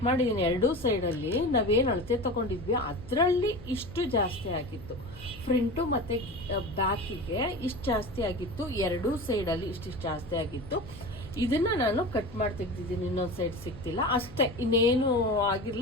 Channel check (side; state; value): left; noise; hum, 19 dB below the sound